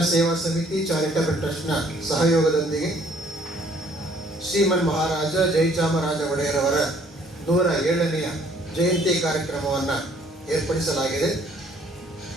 ಸೇವಾ ಸಮಿತಿ ಚಾರಿಟಬಲ್ ಟ್ರಸ್ಟ್ನ ಸಹಯೋಗದೊಂದಿಗೆ ಶ್ರೀಮನ್ ಮಹಾರಾಜ ಜಯಚಾಮರಾಜ ಒಡೆಯರವರ 107ನೇ ಜಯಂತಿ ಕಾರ್ಯಕ್ರಮವನ್ನು ಏರ್ಪಡಿಸಲಾಗಿದೆ.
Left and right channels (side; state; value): both; normal; correlation 0.60